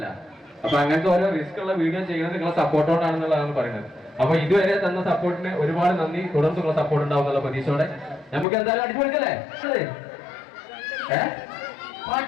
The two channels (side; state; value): right; drops out; at 8.5 s